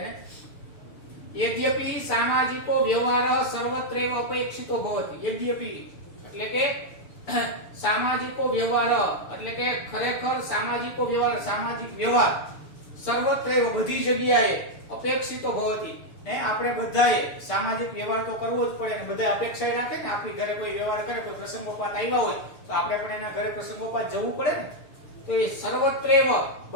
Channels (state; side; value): late; right; 6.8 ms